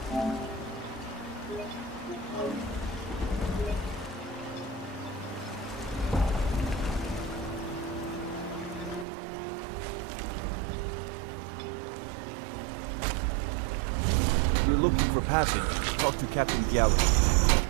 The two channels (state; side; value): drops out; left; at 9.1 s